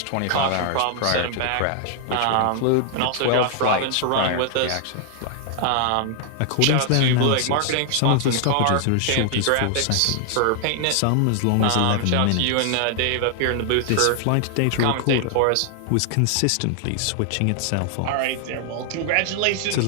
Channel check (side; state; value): both; different; correlation 0.00